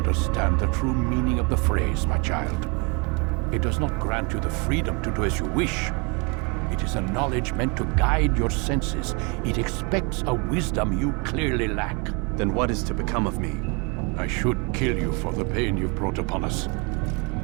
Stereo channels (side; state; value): left; quieter; 31.4 dB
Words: the true meaning of the phrase, my child. It does not grant you the freedom to do as you wish. It is a knowledge meant to guide your senses. It expects a wisdom you clearly lack. Then what is to become of me? I should kill you for the pain you've brought upon us.